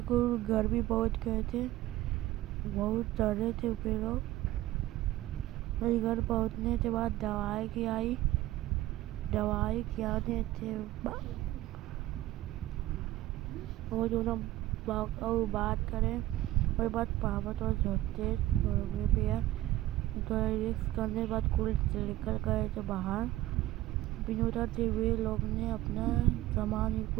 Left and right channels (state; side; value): quieter; left; 15.9 dB